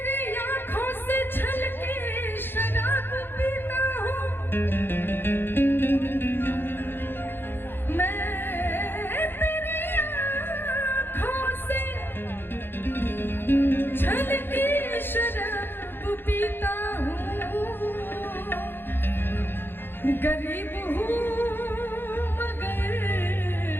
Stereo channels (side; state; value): right; late; 0.10 ms